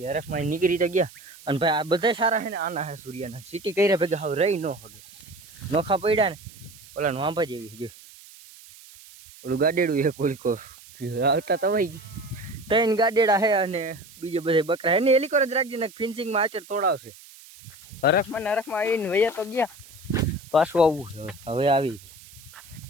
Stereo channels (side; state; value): right; noise; hiss, 21 dB below the sound